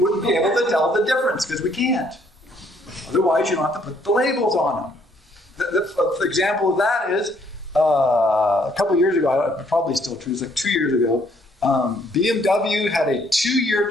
be able to tell the difference because we can't. Otherwise, you don't have to put the labels on them. The example of that is, a couple years ago, probably still true, it's like 2 years ago, BMW had a 2-year,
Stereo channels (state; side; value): normal; both; correlation 0.66